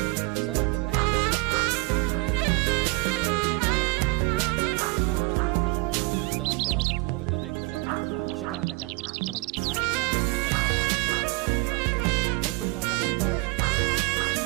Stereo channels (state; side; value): quieter; left; 25.4 dB